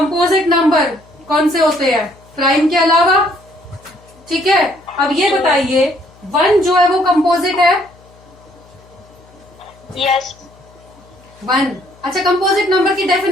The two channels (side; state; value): left; noise; hum, 27 dB below the sound